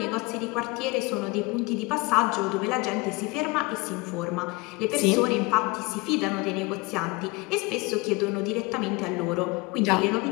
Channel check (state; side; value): quieter; right; 25.0 dB